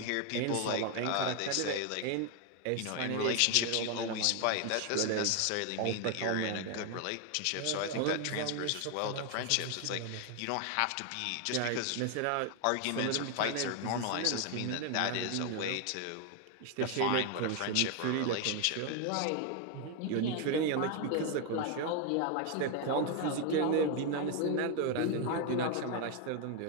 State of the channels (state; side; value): different; both; correlation 0.01